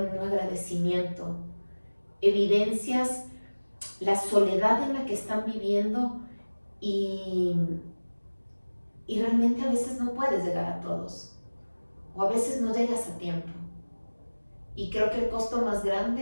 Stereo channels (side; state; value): both; inverted; correlation -1.00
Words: un agradecimiento, evidencias la soledad en la que están viviendo y realmente a veces no puedes llegar a todos o a veces no llegas a tiempo. Y creo que el costo más